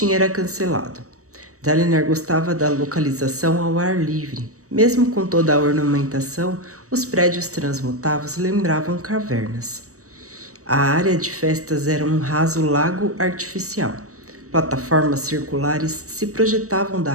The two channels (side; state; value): left; late; 0.65 ms